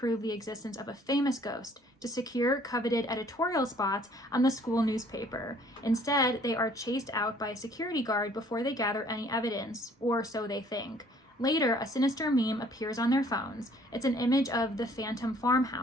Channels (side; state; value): both; normal; correlation 0.58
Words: the existence of a famous ghost to secure coveted editorial spots on the school newspaper. Instead, they are chased out by a security guard before they gather any evidence, or so they think. Later, a sinister meme appears on their phones. It's an image of the Phantom